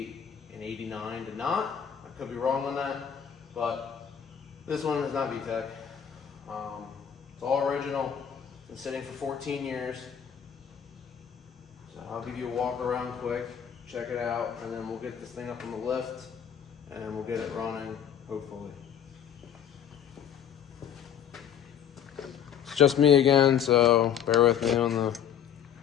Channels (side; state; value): right; quieter; 8.7 dB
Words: and 89 did not. I could be wrong on that, but this one is not VTEC. It's all original. Been sitting for 14 years. So I'll give you a walk around quick, check it out, and then we'll get this thing up on the lift and we'll get it running, hopefully. It's just me again, so bear with me on the